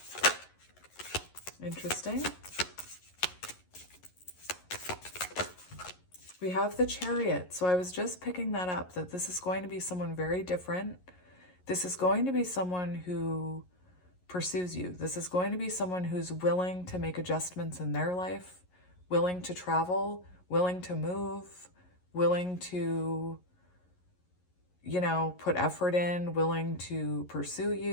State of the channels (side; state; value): right; late; 11 ms